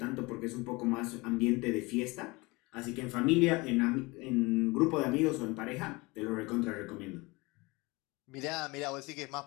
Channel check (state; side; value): quieter; right; 24.4 dB